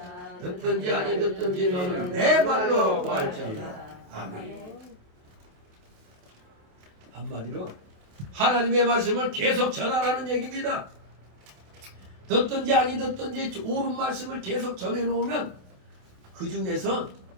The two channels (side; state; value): left; late; 27 ms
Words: 듣든지 아니 듣든지 너는 내 말로 구할지어다. 아멘. 한마디로 하나님의 말씀을 계속 전하라는 얘기입니다. 듣든지 아니 듣든지 옳은 말씀을 계속 전해놓으면 그 중에서